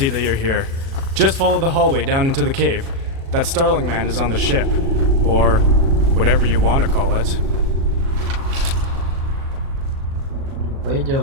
that you're here. Just follow the hallway down into the cave. That Starling man is on the ship. Or whatever you want to call it.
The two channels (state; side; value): late; left; 37 ms